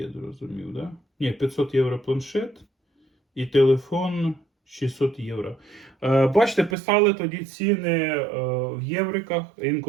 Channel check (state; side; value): drops out; left; at 6.8 s